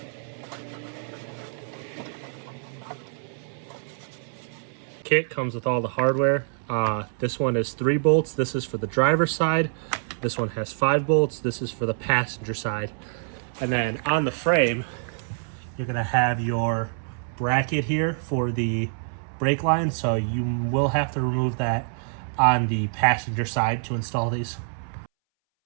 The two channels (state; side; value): silent; left; 61 dB below the other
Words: Kit comes with all the hardware. This one is 3 bolts. This is for the driver's side. This one has 5 bolts. This is for the passenger side. And then on the frame, you're gonna have your bracket here for the brake line. So you will have to remove that on the passenger side to install these.